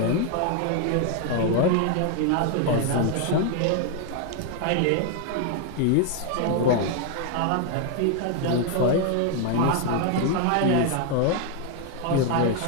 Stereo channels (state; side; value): different; both; correlation 0.01